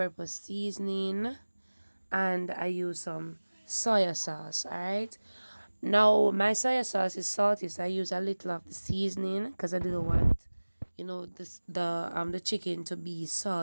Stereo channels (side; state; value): both; inverted; correlation -1.00